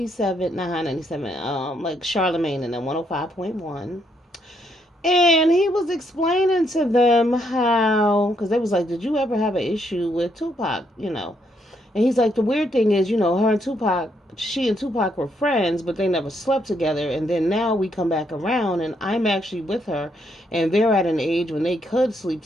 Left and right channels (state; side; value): normal; both; correlation 0.75